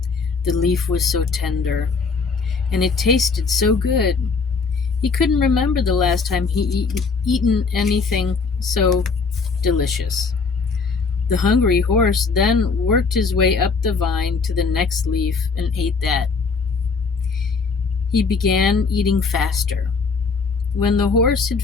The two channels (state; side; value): quieter; right; 4.7 dB